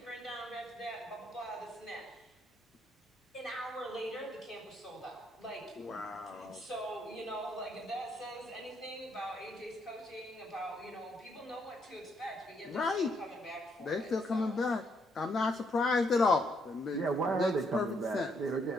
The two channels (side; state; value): both; normal; correlation 0.73